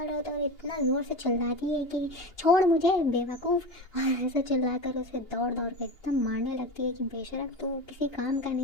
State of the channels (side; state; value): right; late; 2.8 ms